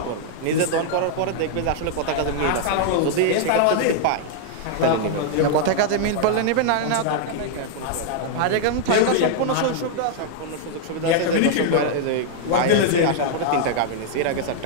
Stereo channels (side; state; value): both; different; correlation -0.01